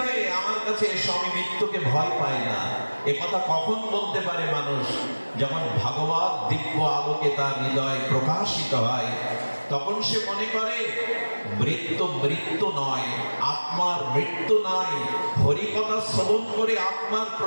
আমার কাছে এসো, আমি মৃত্যুকে ভয় পাই না। এ কথা কখন বলতে পারে মানুষ? যখন ভাগবত দিব্য আলোকে তার হৃদয় প্রকাশিত হয়, তখন সে মনে করে মৃত্যু মৃত্যু নয়, আত্মার মৃত্যু নাই। হরিকথা শ্রবণ করে আত্মার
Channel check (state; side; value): inverted; both; correlation -1.00